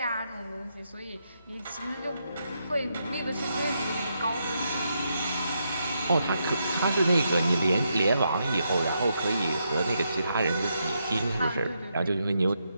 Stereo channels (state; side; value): inverted; both; correlation -0.81